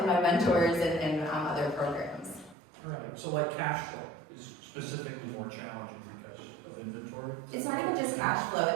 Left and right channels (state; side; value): drops out; left; at 2.6 s